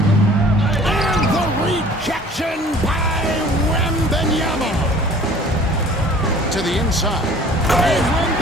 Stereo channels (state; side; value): normal; both; correlation 0.50